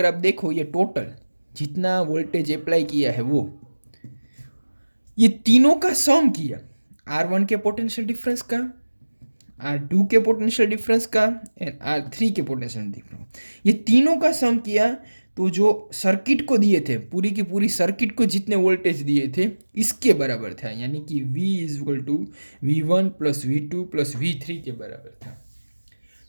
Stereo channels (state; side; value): inverted; both; correlation -1.00